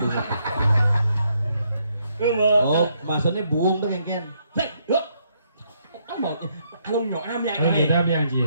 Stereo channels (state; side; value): inverted; both; correlation -0.74